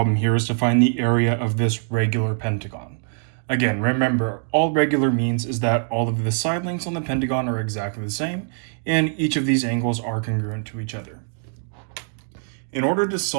here is to find the area of this regular pentagon. Again, remember, all regular means is that all of the side lengths on the pentagon are exactly the same, and each of these angles are congruent to each other. In order to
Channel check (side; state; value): left; silent; 62 dB below the other